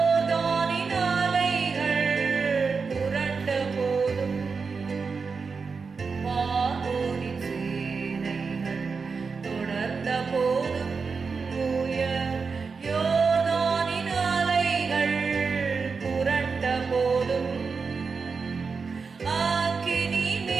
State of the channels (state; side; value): quieter; left; 5.0 dB